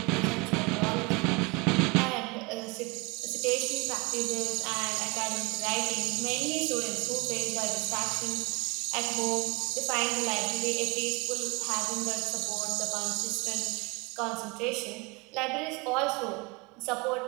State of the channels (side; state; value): left; quieter; 27.1 dB